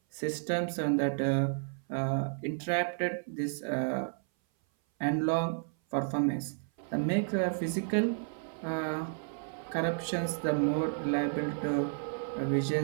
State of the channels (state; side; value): silent; left; 56 dB below the other